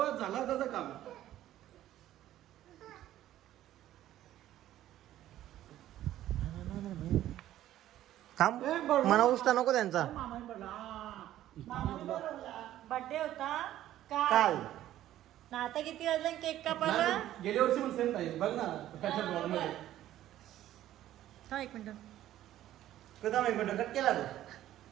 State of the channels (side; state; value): left; quieter; 13.1 dB